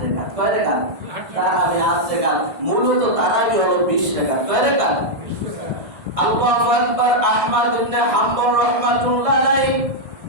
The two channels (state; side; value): late; left; 1.5 ms